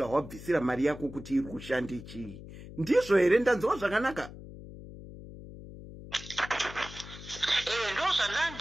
mari yako kuti iri kushanda chii. Ndizvo here ndanzwa zvakanaka? Ndo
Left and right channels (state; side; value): noise; left; hum, 14 dB below the sound